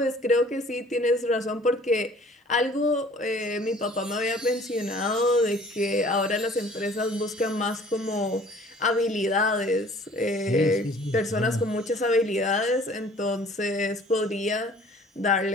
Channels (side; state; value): both; normal; correlation 0.52